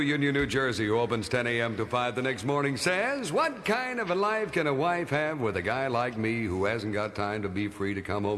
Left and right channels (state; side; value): identical; both; correlation 1.00